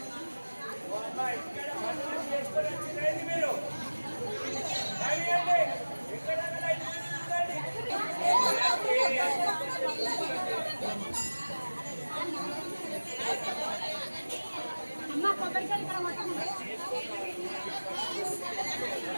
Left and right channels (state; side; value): inverted; both; correlation -1.00